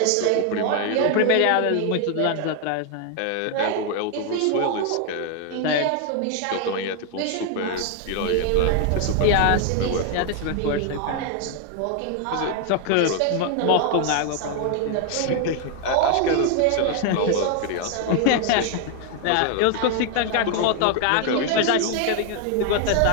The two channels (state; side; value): different; both; correlation 0.00